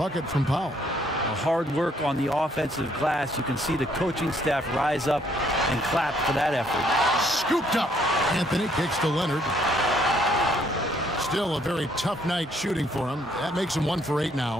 from Powell. Hard work on the offensive glass. You can see the coaching staff rise up and clap for that effort. Scooped up. Anthony kicks to Leonard. Still a very tough night shooting for him. That makes him 1 for 8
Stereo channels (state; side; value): normal; both; correlation 0.67